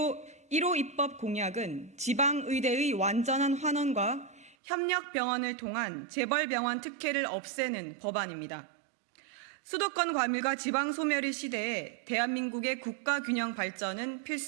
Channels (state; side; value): drops out; left; at 4.5 s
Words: 입법 공약은 지방의대의 완전한 환원과 협력병원을 통한 재벌병원 특혜를 없애는 법안입니다. 수도권 과밀과 지방소멸의 시대에 대한민국의 국가균형 발전은